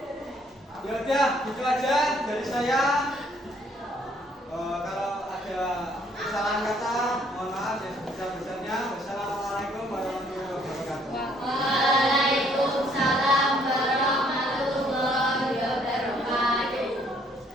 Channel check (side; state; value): both; normal; correlation 0.65